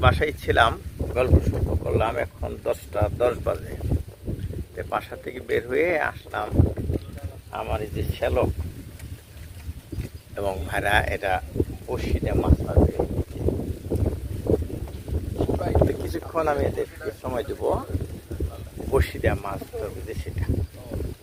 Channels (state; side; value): identical; both; correlation 1.00